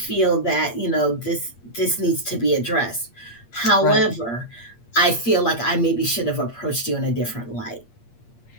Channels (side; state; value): right; late; 8.6 ms